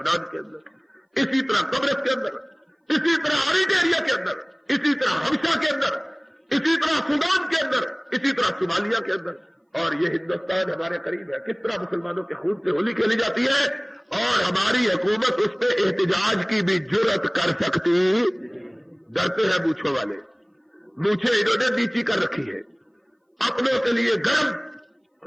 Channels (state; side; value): identical; both; correlation 1.00